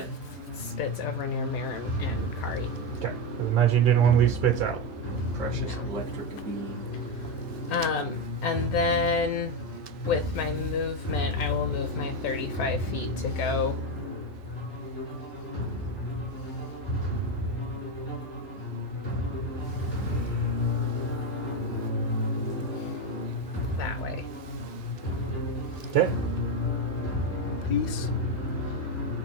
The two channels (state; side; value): normal; both; correlation 0.10